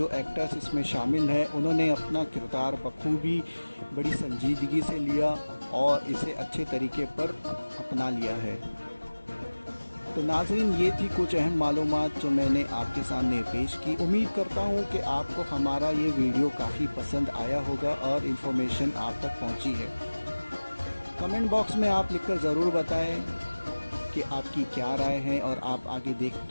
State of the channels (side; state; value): both; inverted; correlation -1.00